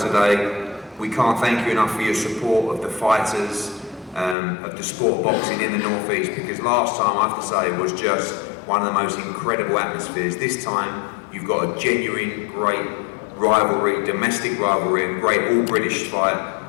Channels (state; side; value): drops out; right; at 4.4 s